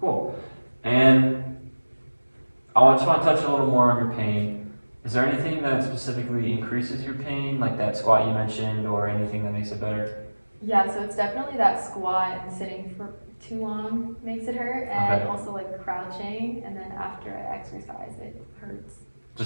And I just want to touch a little more on your pain. Is there anything that specifically increases your pain, like that squat you mentioned, or anything that makes it better? Yeah, so it's definitely that squat and sitting for too long makes it hurt, and Okay. also like crouching, and then after I exercise, it hurts.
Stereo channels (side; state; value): both; inverted; correlation -1.00